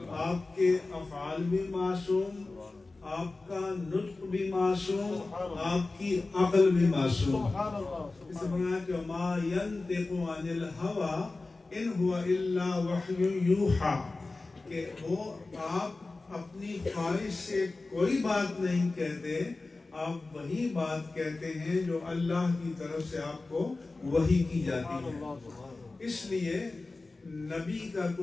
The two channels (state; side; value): quieter; right; 3.4 dB